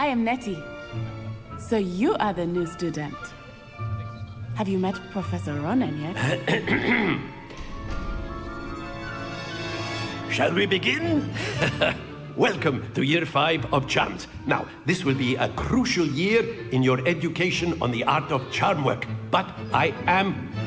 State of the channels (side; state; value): both; identical; correlation 1.00